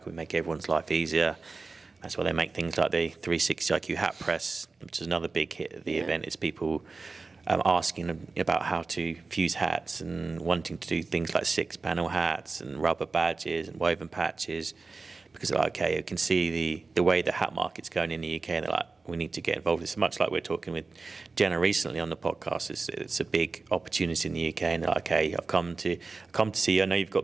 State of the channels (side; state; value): left; quieter; 4.0 dB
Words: we make everyone's life easier. That's why they make things like the 360 IQ hat press, which is another big hit at the event. Is people asking about how to fuse hats and wanting to do things like 6-panel hats and rubber badges and woven patches, because they're like, okay, you can see the way the hat market's going in the UK, and they're like, we need to get involved. It's much like we're talking with Jenna recently on the podcast. It's a big opportunity in the UK, and they're like, okay, I've come to see you. I know you've